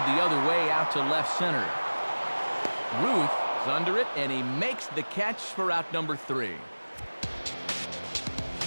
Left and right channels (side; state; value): both; inverted; correlation -1.00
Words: the other way out to left center. Ruth is under it, and he makes the catch for out number 3.